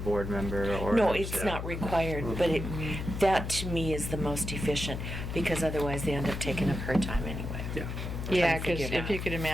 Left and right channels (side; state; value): left; noise; hum, 5 dB below the sound